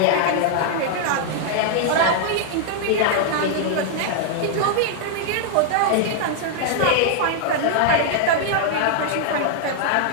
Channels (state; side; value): different; both; correlation -0.01